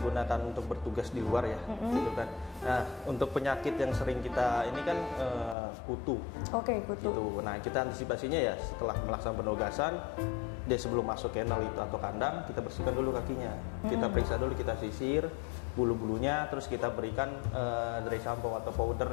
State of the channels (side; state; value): right; drops out; at 5.6 s